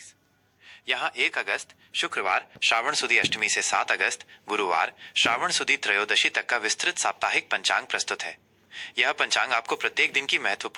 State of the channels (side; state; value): both; identical; correlation 1.00